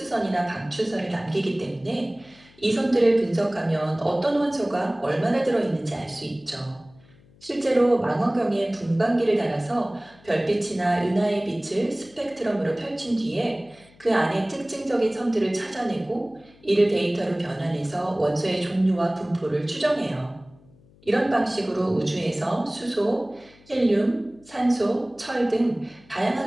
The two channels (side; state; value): left; noise; hum, 28 dB below the sound